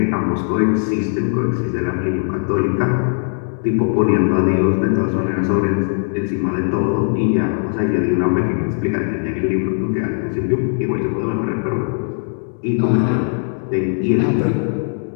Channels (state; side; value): silent; right; 67 dB below the other